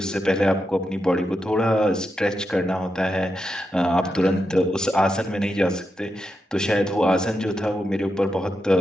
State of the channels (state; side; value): normal; both; correlation 0.86